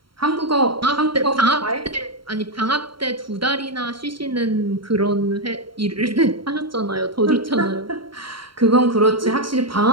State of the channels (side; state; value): left; late; 0.73 ms